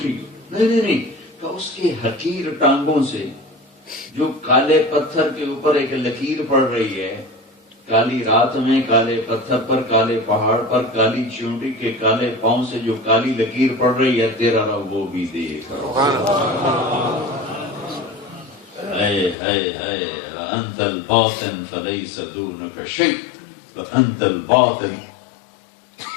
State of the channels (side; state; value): right; drops out; at 19.4 s